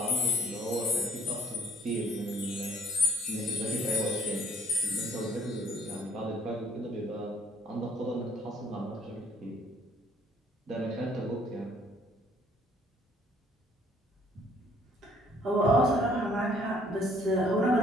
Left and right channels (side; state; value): both; normal; correlation 0.63